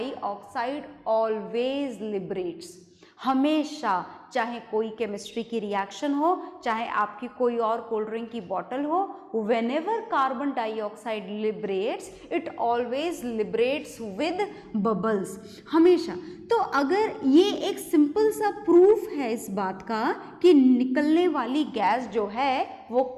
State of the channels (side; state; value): both; identical; correlation 1.00